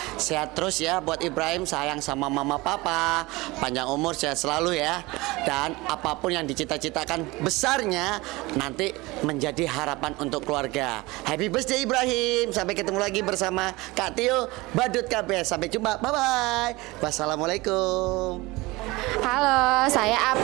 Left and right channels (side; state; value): left; quieter; 21.9 dB